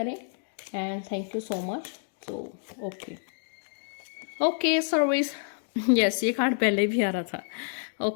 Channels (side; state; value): right; silent; digital silence